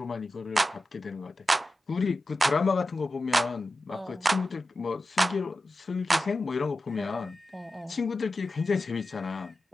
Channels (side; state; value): both; normal; correlation 0.93